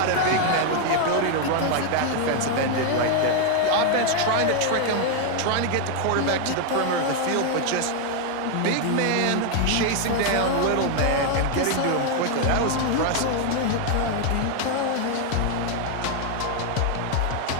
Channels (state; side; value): different; both; correlation 0.00